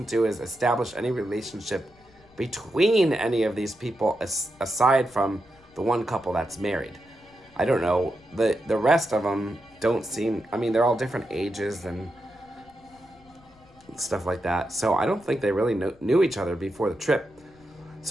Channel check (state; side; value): noise; left; rumble, 28 dB below the sound